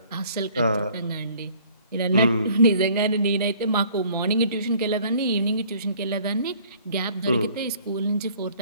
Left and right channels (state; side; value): inverted; both; correlation -0.56